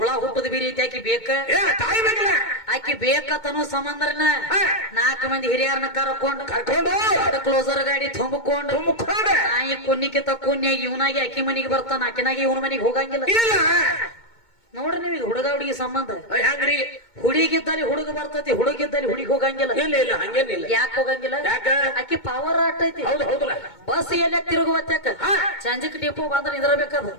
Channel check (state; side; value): late; right; 2.2 ms